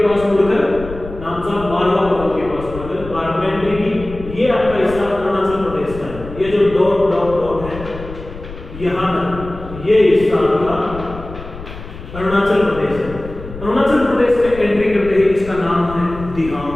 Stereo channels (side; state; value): left; noise; rumble, 13 dB below the sound